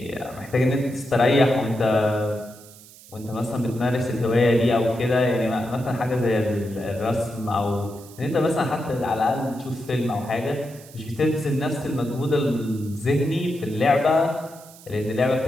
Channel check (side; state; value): right; noise; hiss, 21 dB below the sound